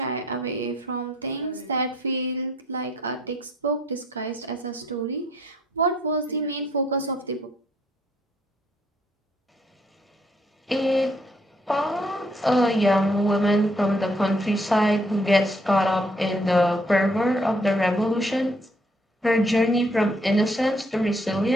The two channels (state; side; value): normal; both; correlation 0.67